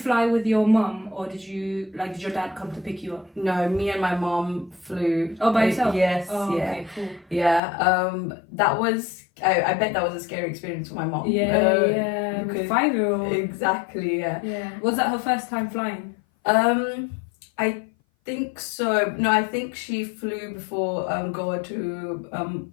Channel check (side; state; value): right; drops out; at 7.6 s